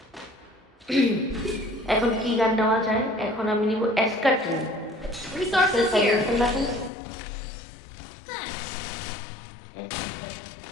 এখন কি গান নেওয়া যায়? এখন আমি নিব এসকাট্রিন। Resources here.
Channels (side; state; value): right; drops out; at 6.9 s